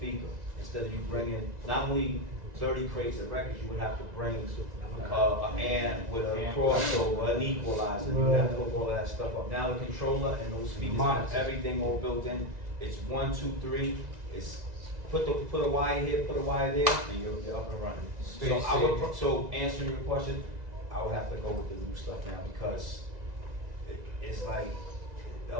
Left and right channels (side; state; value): left; late; 1.9 ms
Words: Instead of you bringing not only 30 crates of records, you would have to bring an amp with a crossover, an equalizer. You have to hook all of that stuff up. Now the controller and those speakers have everything all built in. It's 1, 2, 3. It's put a wire here, put a wire there, and you're up and running. So answering your question, I would have to go with the new stuff now because it's like the